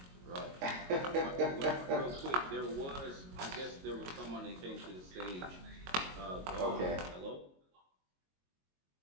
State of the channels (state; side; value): late; left; 22 ms